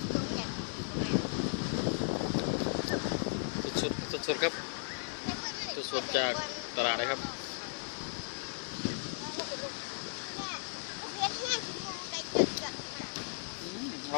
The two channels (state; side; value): silent; right; 54 dB below the other